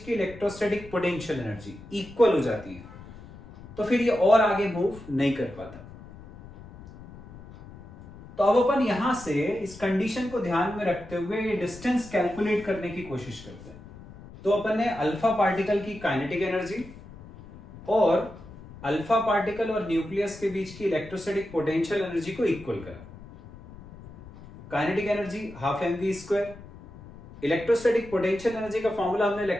की इलेक्ट्रोस्टैटिक पोटेंशियल एनर्जी इक्वल हो जाती है। तो फिर ये और आगे मूव नहीं कर पाता। तो अब अपन यहां से इस कंडीशन को ध्यान में रखते हुए ये डिस्टेंस कैलकुलेट करने की कोशिश करते हैं। तो अपन ने अल्फा पार्टिकल की काइनेटिक एनर्जी और अल्फा पार्टिकल और न्यूक्लियस के बीच की इलेक्ट्रोस्टैटिक पोटेंशियल एनर्जी को इक्वल करा। Kinetic energy half mv²। Electrostatic potential energy का फॉर्मूला हमने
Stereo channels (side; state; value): left; noise; rumble, 18 dB below the sound